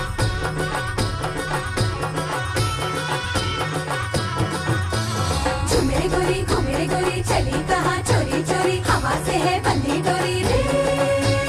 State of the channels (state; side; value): identical; both; correlation 1.00